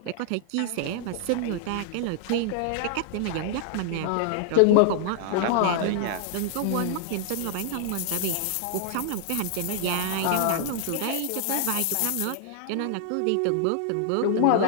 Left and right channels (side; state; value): both; different; correlation -0.01